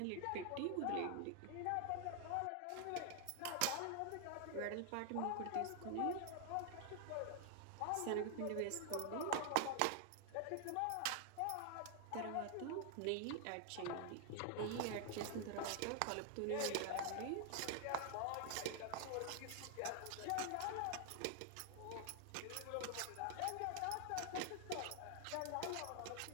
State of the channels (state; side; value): different; both; correlation 0.00